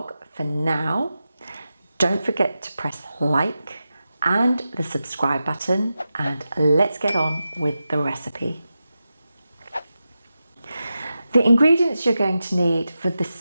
For now, don't forget to press like and the subscribe button, and let's get on with the recipe. The ingredients you're going to need for the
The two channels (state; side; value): inverted; both; correlation -0.91